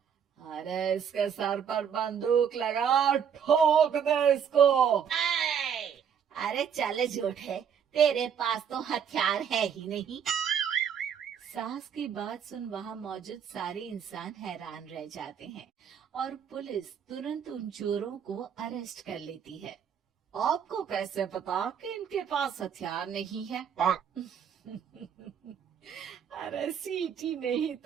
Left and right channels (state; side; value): quieter; left; 7.8 dB